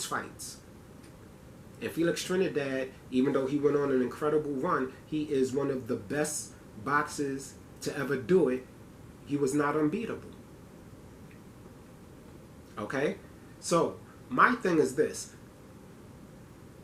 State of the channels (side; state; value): both; identical; correlation 1.00